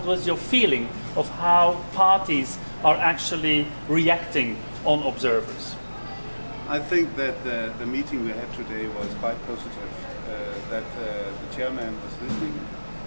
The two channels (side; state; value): both; inverted; correlation -1.00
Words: was your feeling of how parties are actually reacting on observers? I think that the meeting we had today was quite positive, that the chairman was listening